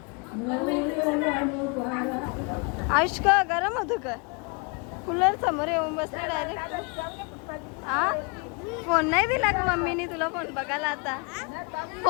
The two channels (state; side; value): quieter; right; 33.3 dB